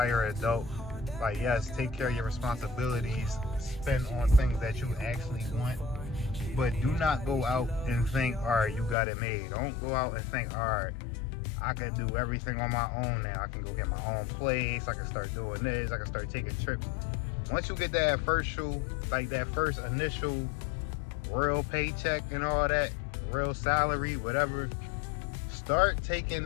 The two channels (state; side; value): drops out; right; at 9.0 s